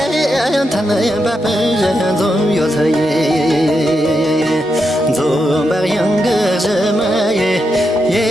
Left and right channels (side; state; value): both; normal; correlation 0.85